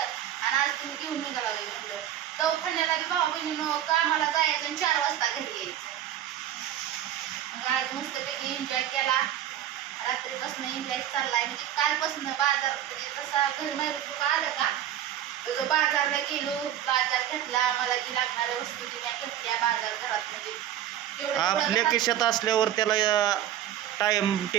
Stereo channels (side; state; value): left; quieter; 11.4 dB